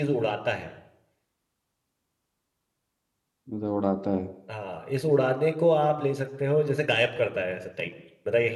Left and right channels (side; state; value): both; identical; correlation 1.00